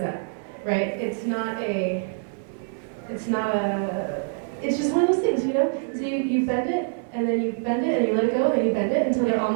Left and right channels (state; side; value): silent; left; 61 dB below the other